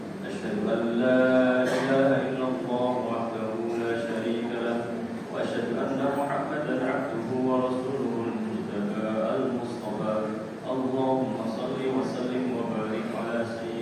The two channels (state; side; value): identical; both; correlation 1.00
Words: Asyhadu an la ilaha illallah wahdahu la syarika lah, wa asyhadu anna Muhammadan 'abduhu wa rasuluhul mujtaba al-mustafa. Allahumma shalli wa sallim wa barik ala